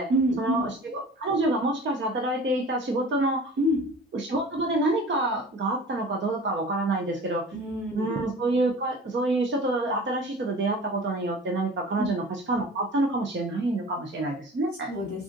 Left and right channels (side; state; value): both; normal; correlation 0.41